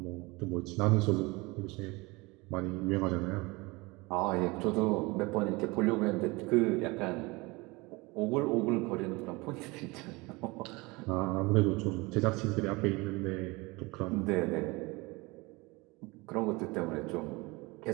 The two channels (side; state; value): left; quieter; 24.3 dB